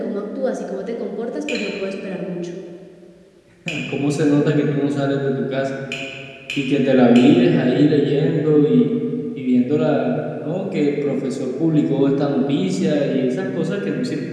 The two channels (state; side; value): identical; both; correlation 1.00